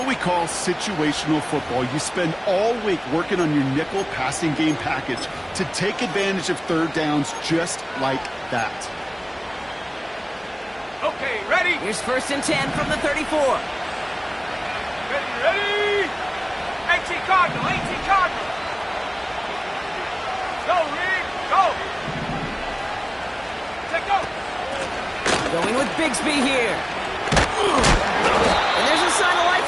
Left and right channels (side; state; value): both; identical; correlation 1.00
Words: we call situational football. You spend all week working on your nickel passing game package to take advantage of third downs just like that. Okay, ready? Here's 1st and 10 from the 34. Ready? 18 Cardinal, 18 Cardinal. Go, Reed, go. Take go. Going with Bigsby here. And there's a sign of life